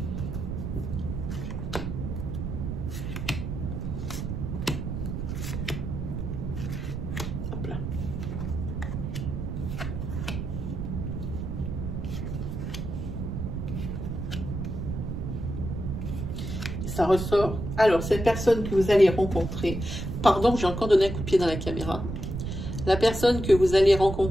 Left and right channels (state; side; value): noise; right; rumble, 4 dB below the sound